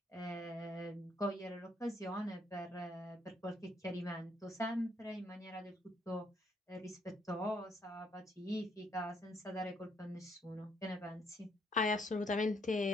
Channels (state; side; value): normal; both; correlation 0.70